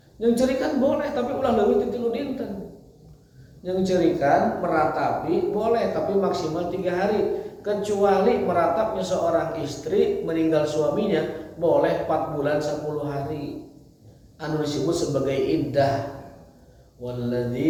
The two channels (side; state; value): both; identical; correlation 1.00